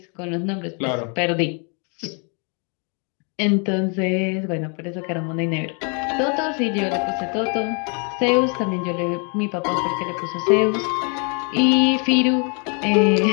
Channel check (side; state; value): right; quieter; 37.1 dB